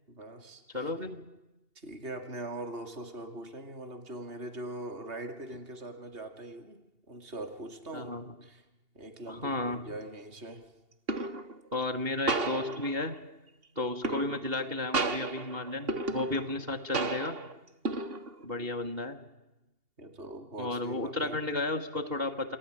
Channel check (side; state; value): left; late; 2.8 ms